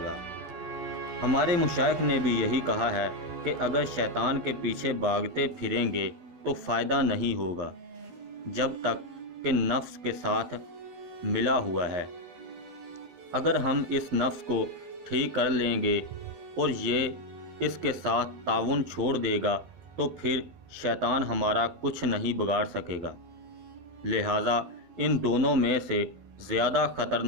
ہمارے مشائخ نے بھی یہی کہا ہے کہ اگر شیطان کے پیچھے بھاگتے پھریں گے تو فائدہ نہیں ہوگا جب تک کہ نفس کے ساتھ ملا ہوا ہے۔ اگر ہم اس نفس کو ٹھیک کر لیں گے اور یہ اس کے ساتھ تعاون چھوڑ دے گا تو پھر شیطان ہمارا کچھ نہیں بگاڑ سکے گا۔ لہٰذا ان دونوں میں سے زیادہ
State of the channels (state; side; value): late; left; 12 ms